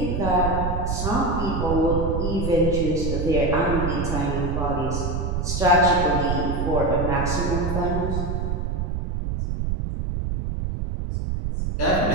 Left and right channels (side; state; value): right; noise; rumble, 1 dB below the sound